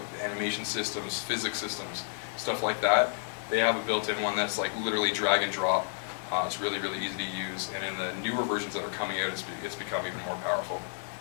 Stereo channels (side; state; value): right; silent; digital silence